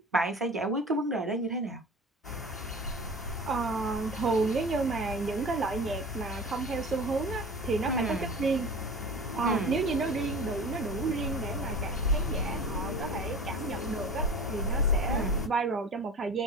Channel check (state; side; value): normal; both; correlation 0.37